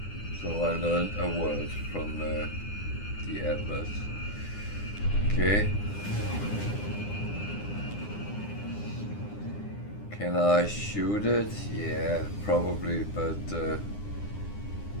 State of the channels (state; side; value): late; right; 9.9 ms